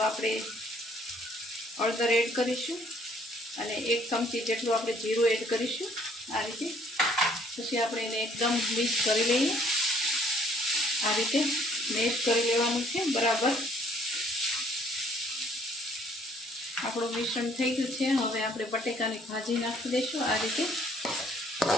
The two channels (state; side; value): normal; both; correlation 0.61